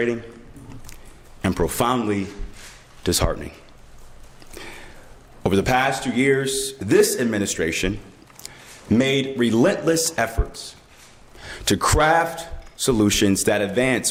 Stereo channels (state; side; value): identical; both; correlation 1.00